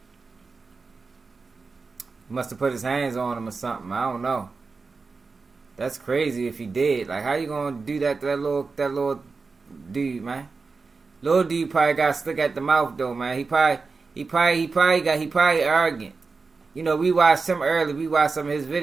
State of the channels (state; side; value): quieter; left; 4.4 dB